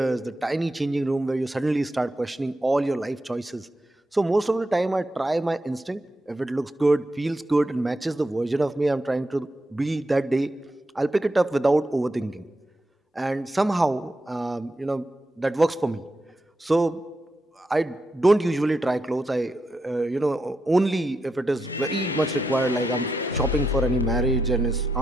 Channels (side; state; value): both; normal; correlation 0.85